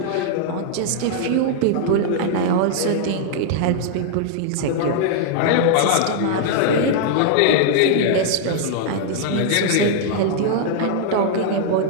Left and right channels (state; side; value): different; both; correlation -0.01